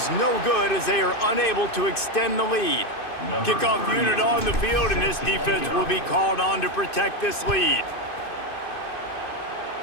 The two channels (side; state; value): right; late; 2.5 ms